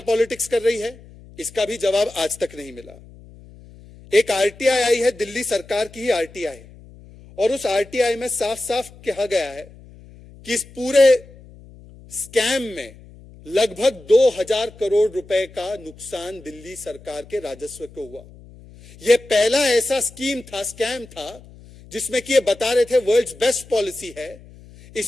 पॉलिटिक्स कर रही है? इसका भी जवाब आज तक नहीं मिला। एक आरटीआई आई है, दिल्ली सरकार की ही आरटीआई, और उस आरटीआई में साफ साफ कहा गया है कि इस पूरे स्कैम में लगभग 2000 करोड़ रुपए का नुकसान दिल्ली सरकार के राजस्व को हुआ। यह पहला ऐसा स्कैम था जिसमें कि ये बता रहे थे वर्ल्ड्स बेस्ट पॉलिसी है,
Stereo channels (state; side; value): noise; left; hum, 22 dB below the sound